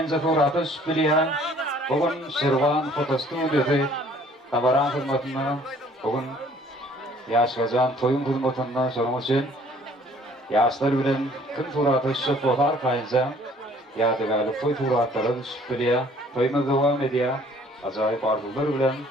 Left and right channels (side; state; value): both; normal; correlation 0.57